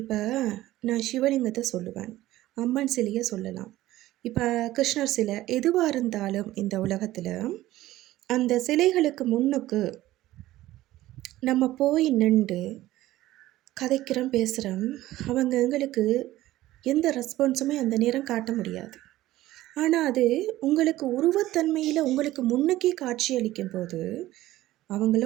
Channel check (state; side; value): quieter; left; 15.7 dB